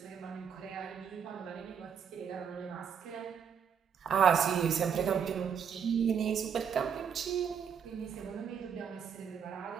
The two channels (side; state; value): left; quieter; 7.3 dB